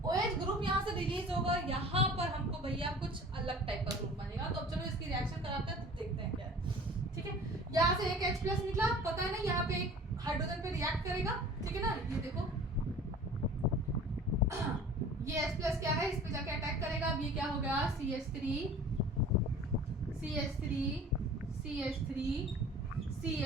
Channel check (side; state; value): both; normal; correlation 0.44